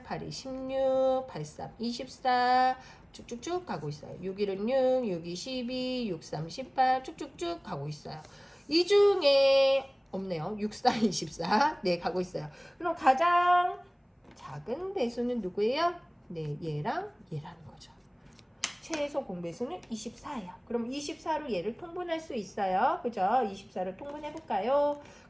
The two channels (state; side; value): identical; both; correlation 1.00